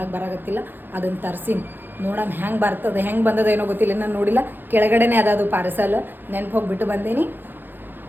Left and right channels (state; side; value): late; left; 0.093 ms